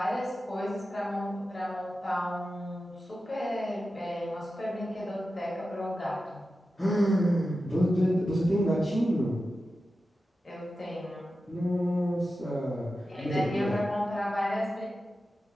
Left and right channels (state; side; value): normal; both; correlation 0.92